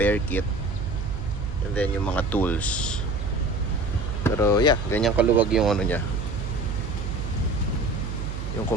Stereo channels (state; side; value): noise; right; hum, 5 dB below the sound